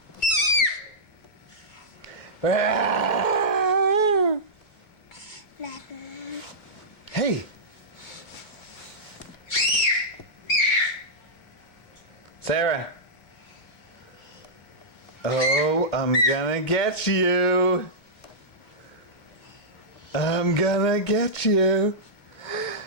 Ah! Hey! Sarah! Oh, I'm gonna get you! I'm gonna get you!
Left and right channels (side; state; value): right; late; 2.3 ms